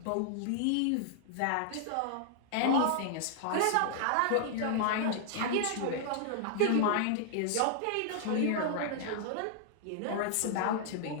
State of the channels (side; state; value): both; different; correlation -0.01